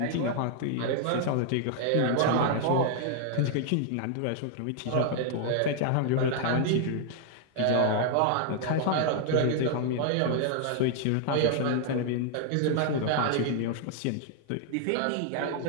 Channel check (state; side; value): different; both; correlation 0.00